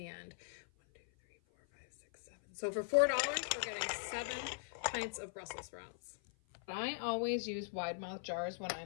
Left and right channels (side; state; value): right; silent; 51 dB below the other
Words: end. 1, 2, 3, 4, 5, 6, 7. So for $4, we're getting 7 pints of Brussels sprouts. I always use wide mouth jars when